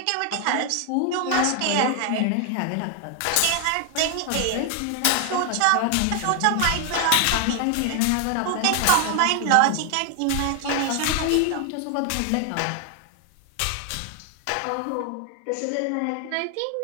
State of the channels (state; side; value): different; both; correlation 0.00